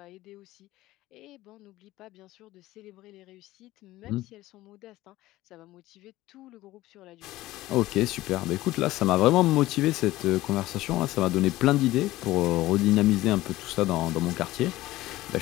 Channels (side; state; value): right; quieter; 16.9 dB